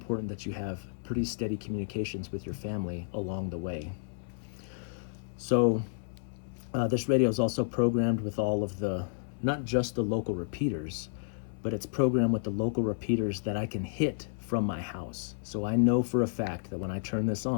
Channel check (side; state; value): right; silent; digital silence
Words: that you have pretty steady communications with your family along the way. So this radio is also programmed with all of the, not just the local repeaters, but it's programmed with the local repeaters that I can hit from my house. So I know for a fact that when I turn this